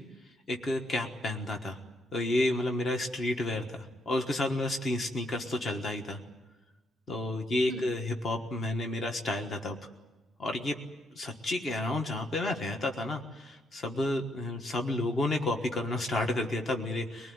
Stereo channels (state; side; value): normal; both; correlation 0.74